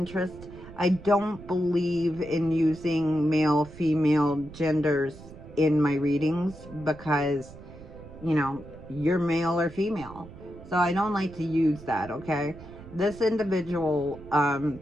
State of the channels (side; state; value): right; noise; rumble, 17 dB below the sound